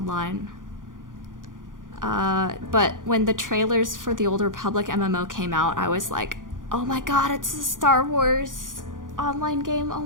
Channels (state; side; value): late; left; 0.89 ms